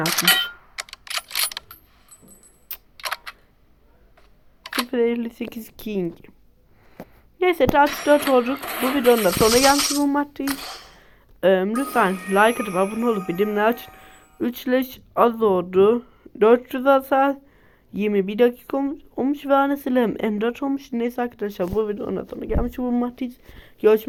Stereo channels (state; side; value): identical; both; correlation 1.00